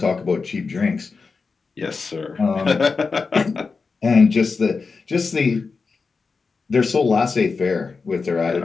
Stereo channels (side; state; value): right; quieter; 4.6 dB